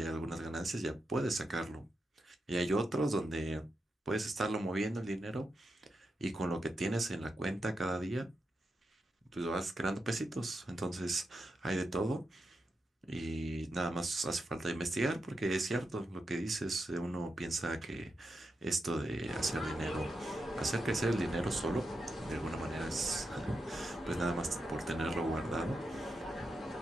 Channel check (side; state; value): both; normal; correlation 0.86